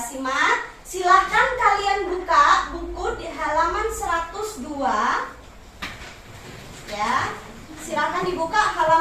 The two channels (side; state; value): both; identical; correlation 1.00